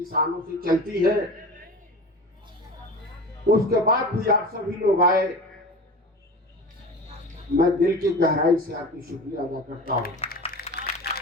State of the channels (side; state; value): both; normal; correlation 0.33